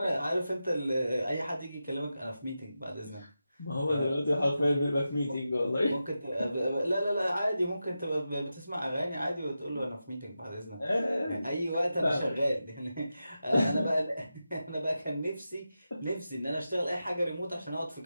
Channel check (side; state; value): both; inverted; correlation -0.91